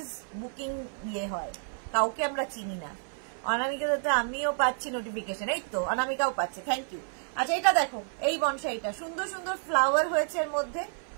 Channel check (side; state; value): left; silent; 58 dB below the other